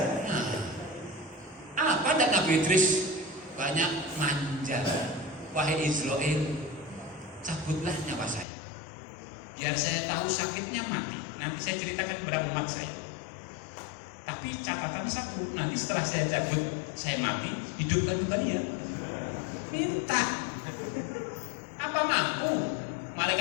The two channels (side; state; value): right; drops out; at 8.5 s